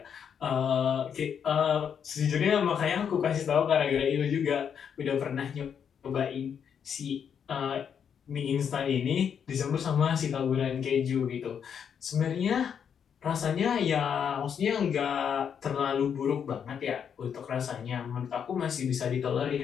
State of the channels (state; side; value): quieter; right; 7.7 dB